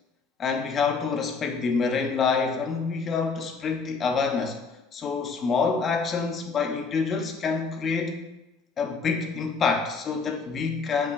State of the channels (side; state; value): right; quieter; 4.8 dB